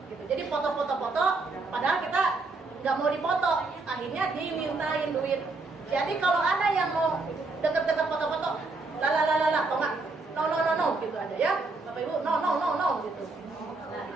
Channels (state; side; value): quieter; left; 3.6 dB